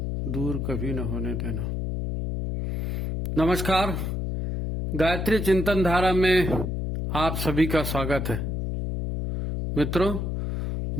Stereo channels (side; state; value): left; noise; hum, 2 dB below the sound